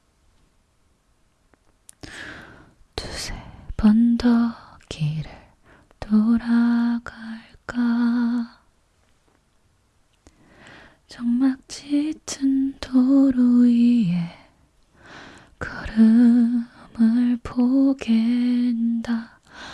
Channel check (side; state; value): both; identical; correlation 1.00